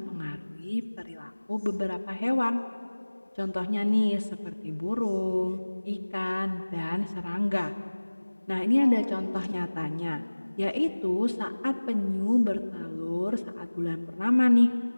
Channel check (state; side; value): inverted; both; correlation -1.00